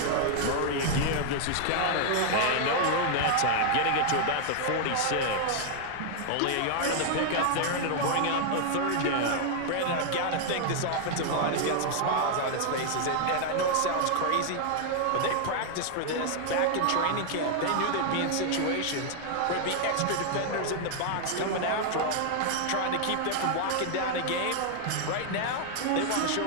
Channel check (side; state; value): both; different; correlation 0.00